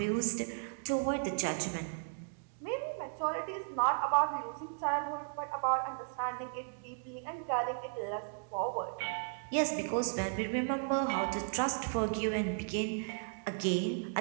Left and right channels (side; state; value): left; silent; digital silence